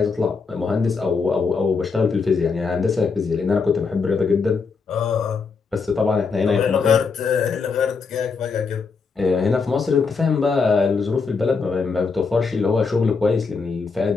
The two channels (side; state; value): right; quieter; 4.9 dB